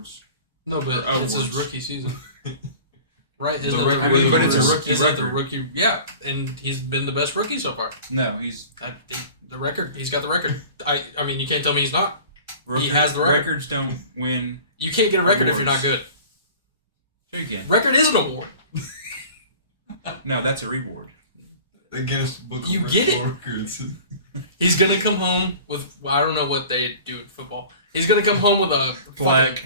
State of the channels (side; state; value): both; inverted; correlation -0.42